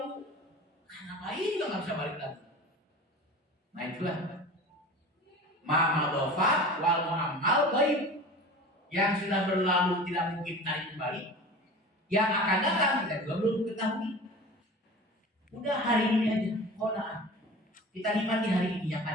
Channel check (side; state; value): both; normal; correlation 0.36